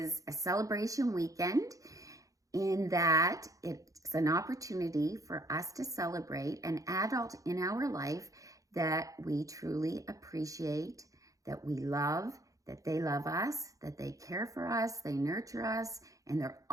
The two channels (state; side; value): late; left; 0.16 ms